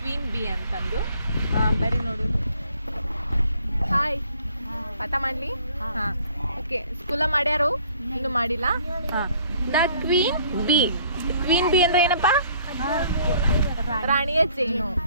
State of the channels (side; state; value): both; inverted; correlation -0.59